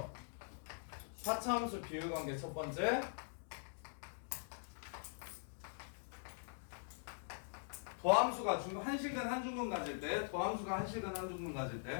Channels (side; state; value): right; silent; digital silence